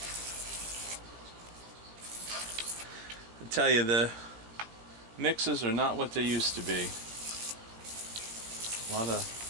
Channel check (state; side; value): late; left; 18 ms